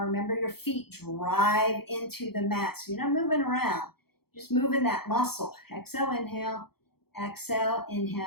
your feet drive into the mat, so you're not moving around. Just moving that muscle. Exhale, inhale. Exhale,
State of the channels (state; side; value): late; right; 0.96 ms